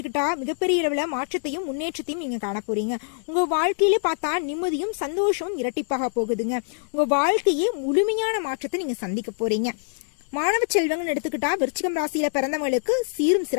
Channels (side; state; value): right; silent; digital silence